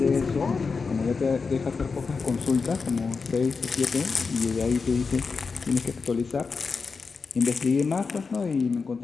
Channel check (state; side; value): quieter; right; 4.8 dB